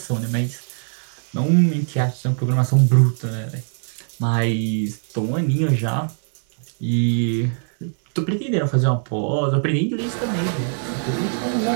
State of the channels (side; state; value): left; silent; 64 dB below the other